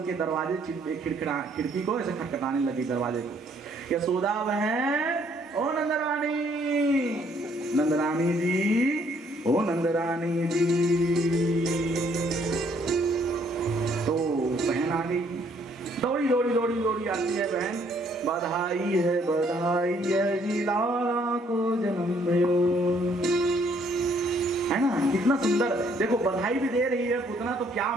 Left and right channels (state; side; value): normal; both; correlation 0.66